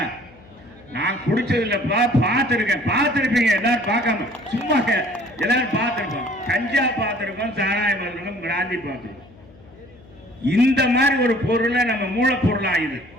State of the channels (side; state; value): left; noise; hum, 24 dB below the sound